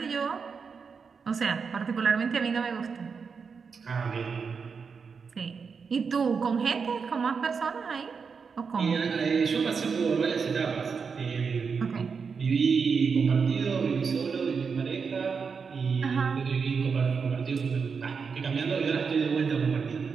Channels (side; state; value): left; quieter; 5.6 dB